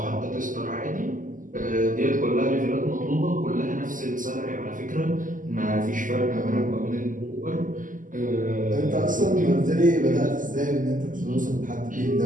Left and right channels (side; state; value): left; late; 0.38 ms